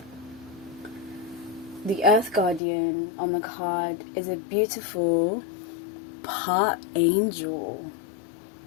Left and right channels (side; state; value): right; drops out; at 2.6 s